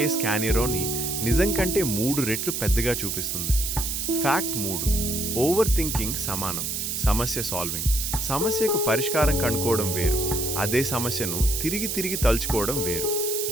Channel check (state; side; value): noise; right; hiss, 2 dB below the sound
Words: స్కానిరోని నిజం కంటే 3 రెట్లు పెద్దగా చూపిస్తుంది. ఫ్యాక్ట్ 3, ఓవర్ థింకింగ్ సమానం సమస్య సాల్వింగ్. సమస్యకు పరిష్కారం కనుక్కోవడం వేరు, అదే సమస్యను తిరిగి తిరిగి తలుచుకోవడం వేరు.